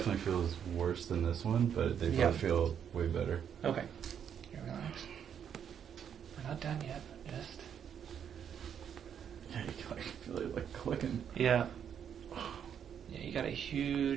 feels worse than this one, but they both feel way better. Okay. Here, relax. We're not done yet. Just... Yeah, you can like feel it like clicking. Yeah. Yeah, you got a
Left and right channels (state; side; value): quieter; left; 8.4 dB